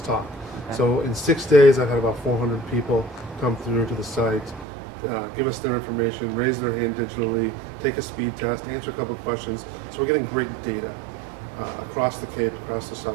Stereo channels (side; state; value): left; drops out; at 4.7 s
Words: Okay. So in 6 days, I've had about 400 people come through to the site, give us their information, raise their hand digitally, take a speed test, answer a couple of questions. So we're getting great data across the Cape, across the